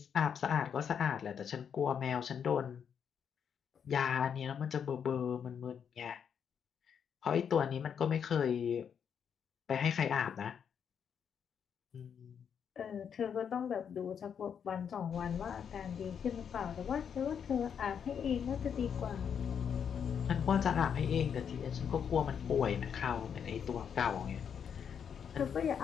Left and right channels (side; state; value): right; quieter; 7.6 dB